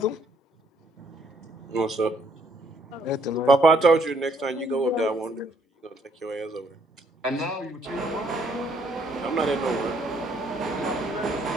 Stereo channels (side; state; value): both; normal; correlation 0.67